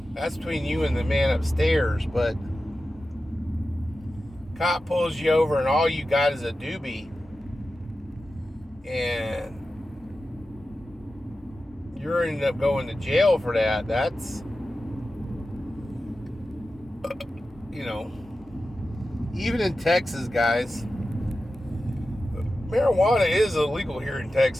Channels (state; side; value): normal; both; correlation 0.93